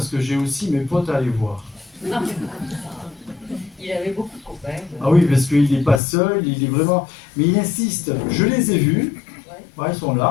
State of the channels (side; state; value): right; drops out; at 6.0 s